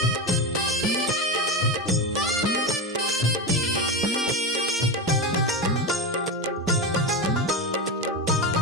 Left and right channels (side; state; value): both; normal; correlation 0.18